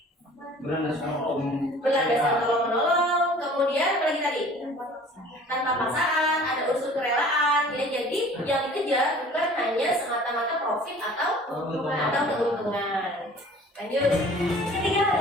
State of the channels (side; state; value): both; normal; correlation 0.48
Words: berlandaskan tolong menolong, kemudian apa lagi tadi? Tanpa paksaan, ada unsur kerelaan, ya. Jadi yang dikejar bukan hanya semata-mata profit atau keuntungan. Lanjut. Ketiga